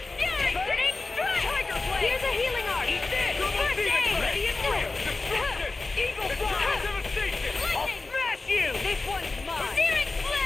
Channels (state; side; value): quieter; right; 3.6 dB